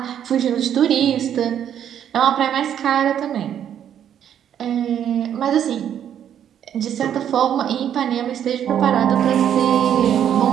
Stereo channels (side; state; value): left; quieter; 9.6 dB